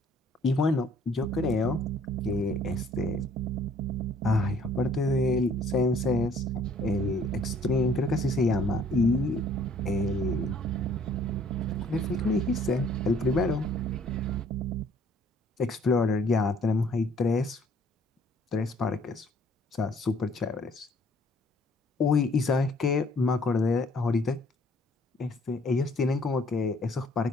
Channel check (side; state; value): both; normal; correlation 0.59